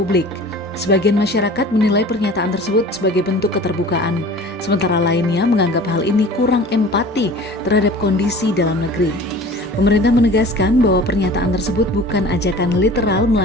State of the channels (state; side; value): normal; both; correlation 0.43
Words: Sebagian masyarakat menilai pernyataan tersebut sebagai bentuk keterbukaan, sementara lainnya menganggap hal ini kurang empati terhadap kondisi dalam negeri. Pemerintah menegaskan bahwa pernyataan tersebut bukan ajakan literal